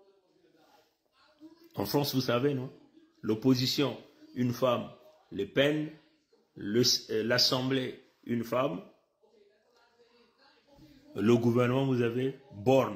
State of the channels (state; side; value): identical; both; correlation 1.00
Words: En France, vous savez, non? L'opposition, une femme, Le Pen, l'Assemblée, une femme. Le gouvernement, vous avez